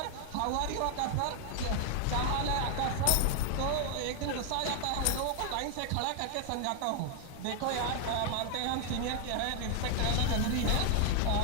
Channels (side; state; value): both; different; correlation 0.00